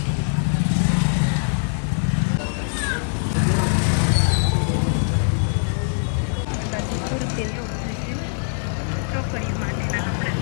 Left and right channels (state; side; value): silent; right; digital silence